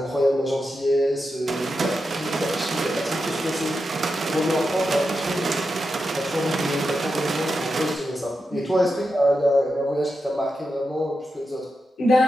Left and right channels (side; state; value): both; normal; correlation 0.88